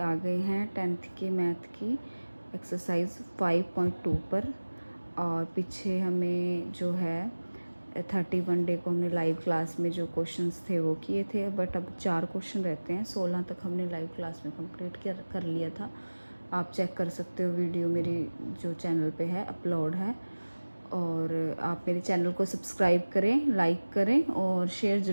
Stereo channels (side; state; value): both; inverted; correlation -1.00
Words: गए हैं 10th के मैथ की एक्सरसाइज 5.2 पर। और पीछे हमें जो है 31 डे को हमने लाइव क्लास में जो क्वेश्चंस थे वो किए थे, बट अब 4 क्वेश्चन रहते हैं। 16 तक हमने लाइव क्लास में कंप्लीट कर लिया था। आप चेक कर सकते हो, वीडियो मेरी जो चैनल पे है अपलोड है। और आप मेरे चैनल को सब्सक्राइब करें, लाइक करें और शेयर